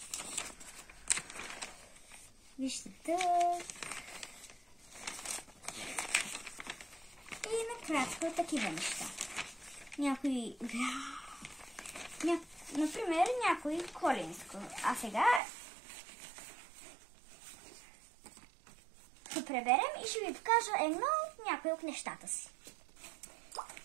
Вижте тук. И накратко такива неща. Например, някой коленско. А сега заедно преберем и ще ви покажа някои от нещата си.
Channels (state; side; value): drops out; left; at 15.4 s